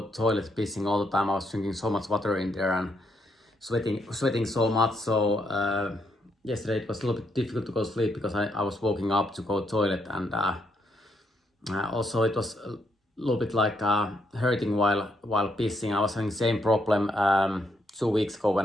toilet, pissing all the time. I was drinking so much water in there and sweating so much. So yesterday it was a little bit difficult to go to sleep because I was waking up to go to toilet, and also it was a little bit like hurting while pissing. I was having the same problem 2 weeks ago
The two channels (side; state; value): both; normal; correlation 0.76